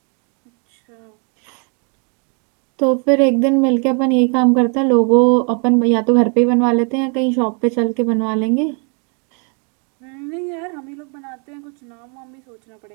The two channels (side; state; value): left; quieter; 37.6 dB